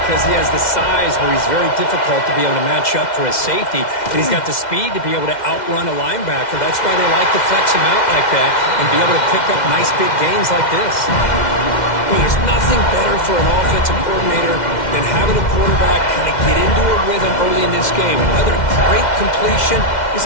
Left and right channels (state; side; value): late; right; 2.1 ms